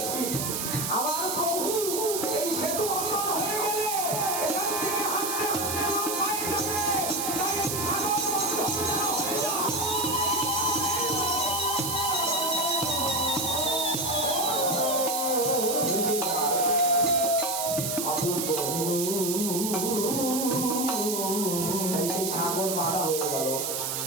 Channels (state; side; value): noise; right; hiss, 2 dB below the sound